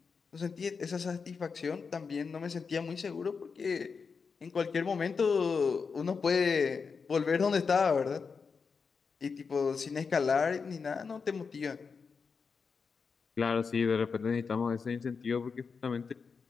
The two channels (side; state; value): right; quieter; 5.4 dB